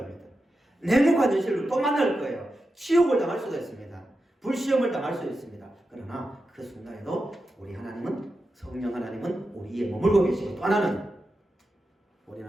냉혹한 현실로 또 만날 거예요. 치욕을 당할 수도 있습니다. 불시험을 당할 수도 있습니다. 그러나 그 순간에도 우리 하나님은, 성령 하나님은 우리 위에 머물고 계시고, 또 하나는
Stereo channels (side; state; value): both; normal; correlation 0.90